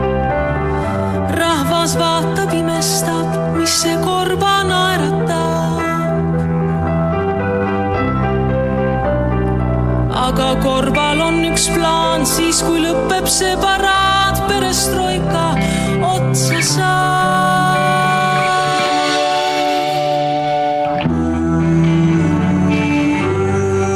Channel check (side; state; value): both; identical; correlation 1.00